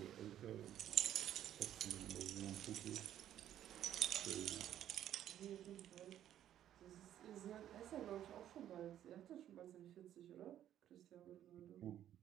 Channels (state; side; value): quieter; left; 11.3 dB